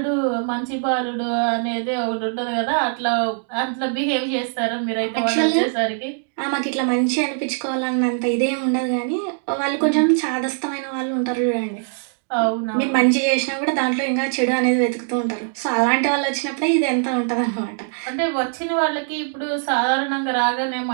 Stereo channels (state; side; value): silent; left; 64 dB below the other